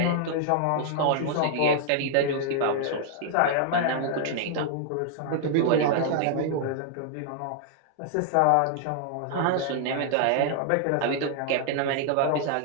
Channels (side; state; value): both; different; correlation 0.00